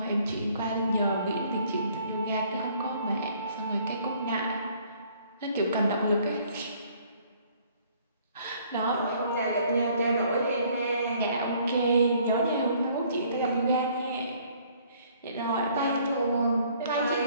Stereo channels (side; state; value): both; inverted; correlation -0.60